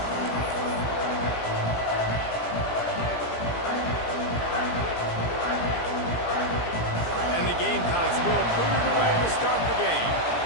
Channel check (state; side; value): late; right; 17 ms